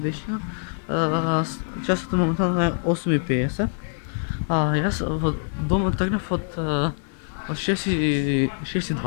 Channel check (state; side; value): silent; right; digital silence